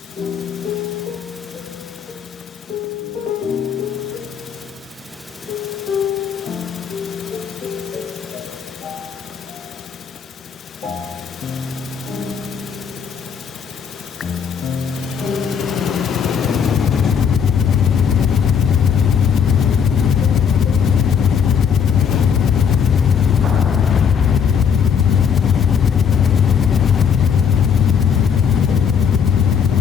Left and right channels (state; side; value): quieter; right; 7.2 dB